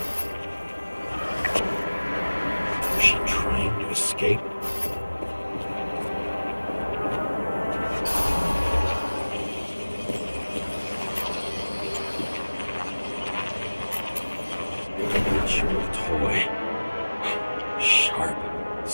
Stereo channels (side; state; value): both; inverted; correlation -1.00